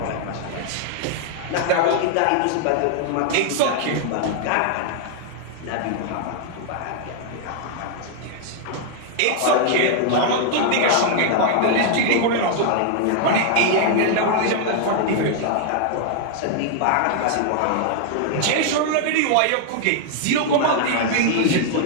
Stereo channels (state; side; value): different; both; correlation 0.00